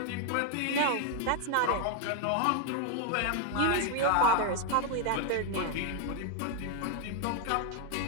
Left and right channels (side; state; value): both; different; correlation 0.01